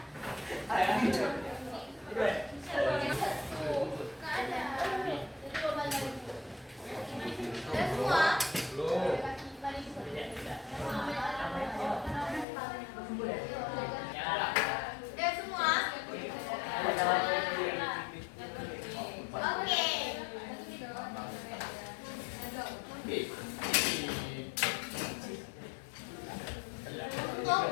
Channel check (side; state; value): right; drops out; at 12.5 s